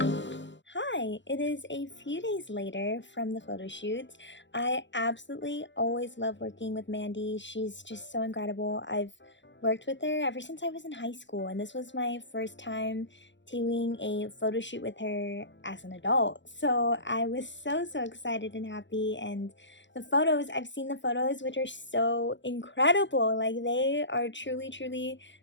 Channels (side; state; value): right; late; 0.53 ms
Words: Hi, it is a few days later from the photo shoot. I absolutely always love working with Mandy. She's just so incredible. I've worked with her ever since I was in high school, and this was my first time doing a photo shoot with her as an adult. So I was so excited and happy, and the photos, I've seen the photos, which are so incredible. Like, they are truly